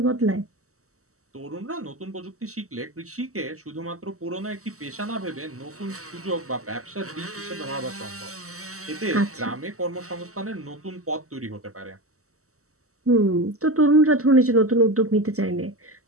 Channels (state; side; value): late; left; 0.64 ms